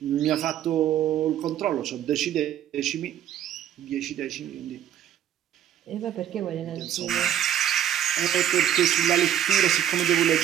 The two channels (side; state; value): left; quieter; 10.7 dB